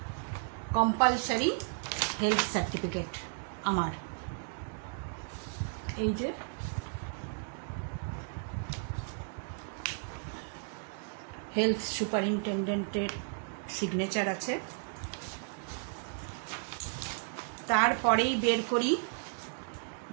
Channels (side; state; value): left; silent; 55 dB below the other